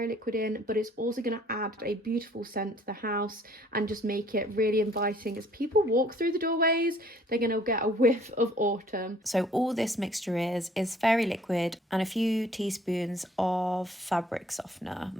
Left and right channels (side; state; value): both; normal; correlation 0.58